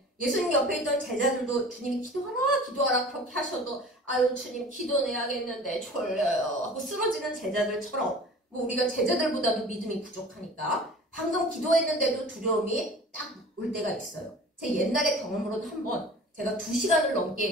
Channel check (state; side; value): normal; both; correlation 0.42